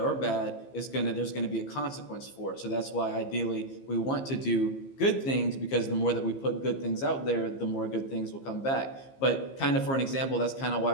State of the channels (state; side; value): late; right; 15 ms